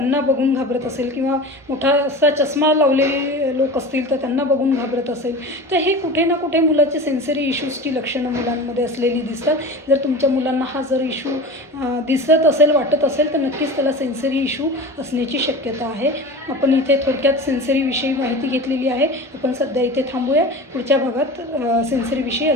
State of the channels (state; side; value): normal; both; correlation 0.33